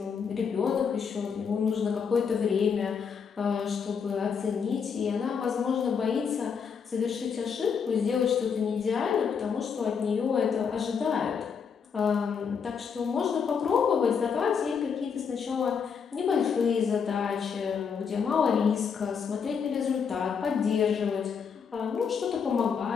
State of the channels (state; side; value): quieter; right; 6.5 dB